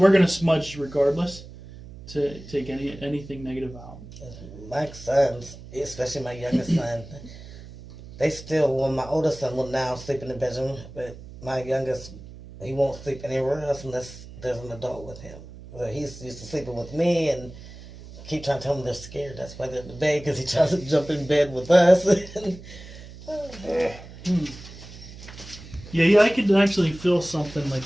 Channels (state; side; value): noise; right; hum, 16 dB below the sound